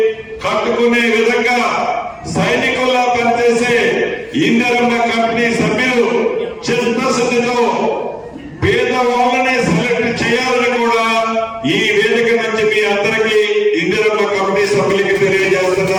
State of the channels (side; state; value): both; identical; correlation 1.00